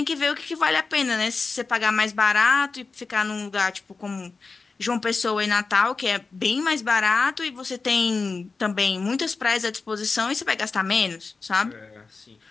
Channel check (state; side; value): quieter; right; 4.3 dB